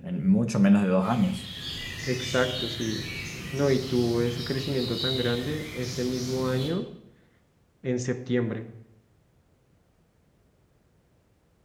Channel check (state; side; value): identical; both; correlation 1.00